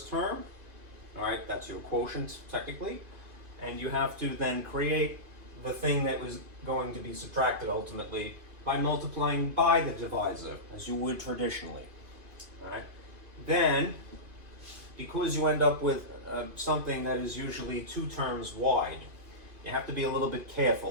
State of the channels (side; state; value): left; late; 2.5 ms